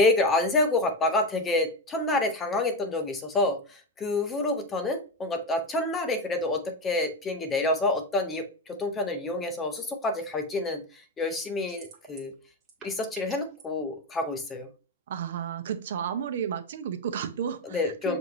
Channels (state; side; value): normal; both; correlation 0.14